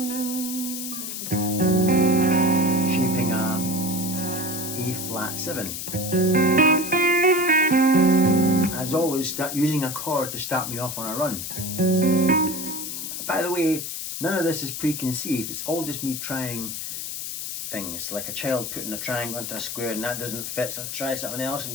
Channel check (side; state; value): left; noise; hiss, 6 dB below the sound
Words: shaping a A flat 7. As always, start using a chord to start me off on a run. By the way, none of this is preconceived, it's all just me trying things, like a child putting a triangle into a square and that doesn't fit, so I try something else and